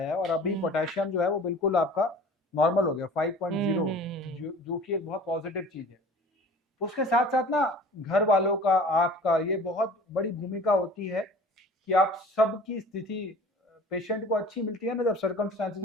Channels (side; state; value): both; normal; correlation 0.44